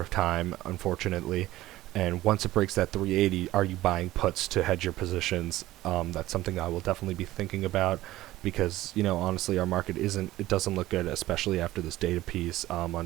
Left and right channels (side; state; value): left; quieter; 16.0 dB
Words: time, unfortunately. And once it breaks that 380, are you buying puts to hedge your positions? That's something I will definitely be thinking about because, honestly, our market doesn't look good, especially after this data piece